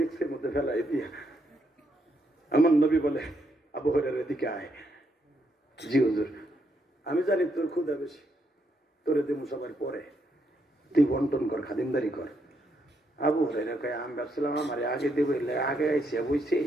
মধ্যে ফেলাই দিয়া আমার নবী বলে আবু হুরায়রা এদিকে আয়। জি হুজুর। আমি জানি তোর ক্ষুধা বেশি, তোরে দেবো সবার পরে, তুই বন্টন কর, খাদিমদারি কর। আবু হুরায়রা কয় আমি ভাবছিলাম আমার আগে দেবো, আগে আইসে বুঝছি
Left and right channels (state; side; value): normal; both; correlation 0.77